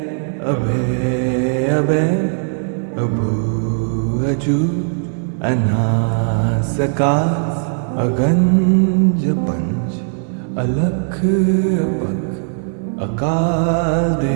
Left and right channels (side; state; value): left; silent; 60 dB below the other